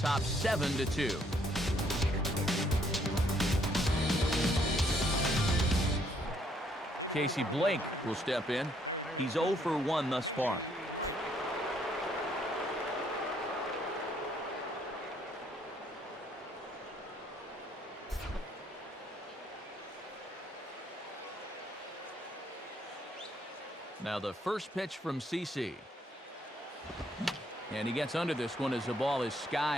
7-2. Casey Blake will step in. He's 0 for 1 thus far. Now the first pitch from CC. And he gets under this one as the ball is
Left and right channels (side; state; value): both; normal; correlation 0.68